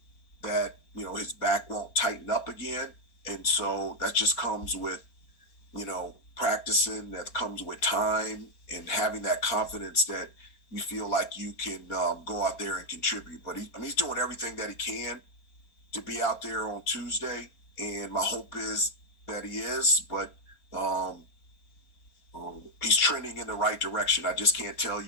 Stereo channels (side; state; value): right; late; 4.3 ms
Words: that his back won't tighten up again, and so that just comes with practicing. That comes with time and having that confidence that you feel like you can go out there and contribute. But he's doing everything that he can to be out there on Tuesday, and my hope is that he is, but he's trending in the right direction. I just can't tell